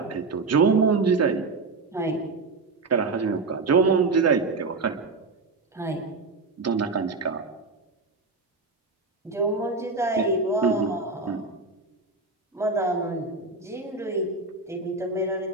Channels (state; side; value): quieter; left; 3.9 dB